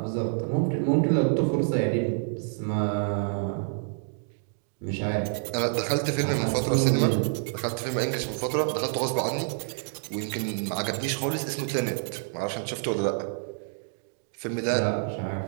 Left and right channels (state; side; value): silent; left; 60 dB below the other